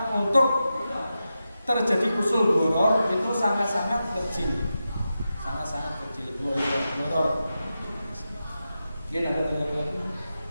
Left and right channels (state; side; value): inverted; both; correlation -0.90